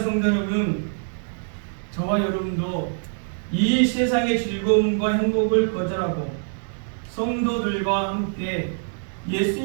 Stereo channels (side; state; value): left; silent; digital silence